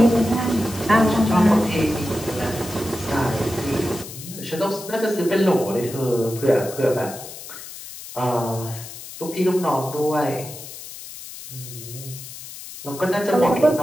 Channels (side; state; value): left; noise; hiss, 13 dB below the sound